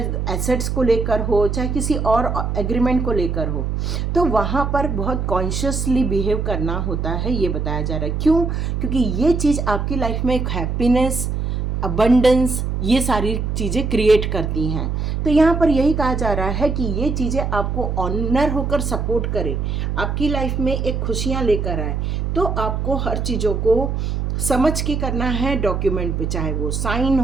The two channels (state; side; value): noise; right; hum, 1 dB below the sound